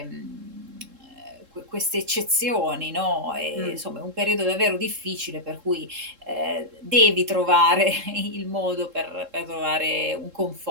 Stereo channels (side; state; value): left; late; 3.7 ms